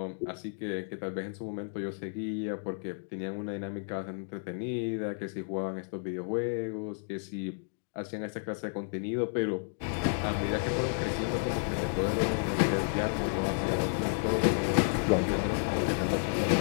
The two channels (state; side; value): silent; right; digital silence